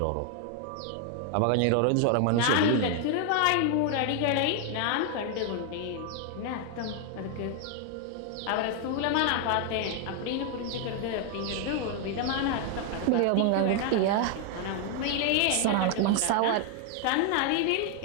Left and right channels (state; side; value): different; both; correlation 0.01